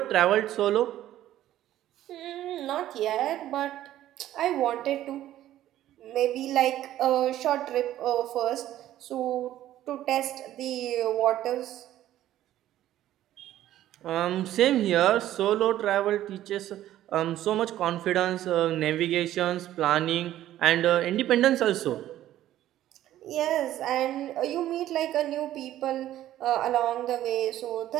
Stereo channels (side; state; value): left; quieter; 13.1 dB